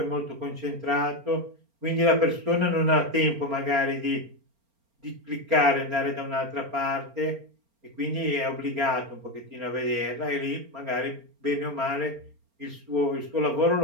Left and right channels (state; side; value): late; left; 4.3 ms